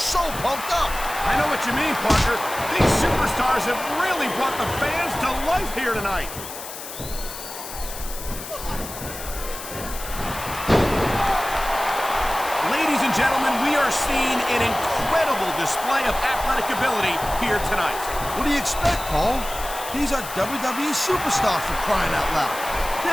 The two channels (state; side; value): noise; left; hiss, 11 dB below the sound